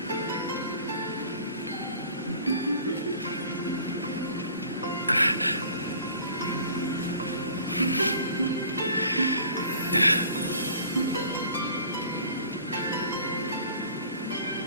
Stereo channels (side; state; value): both; inverted; correlation -0.49